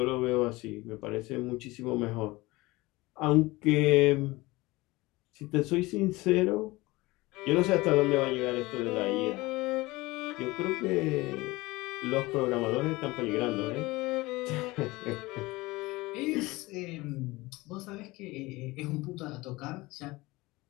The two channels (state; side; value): quieter; right; 21.1 dB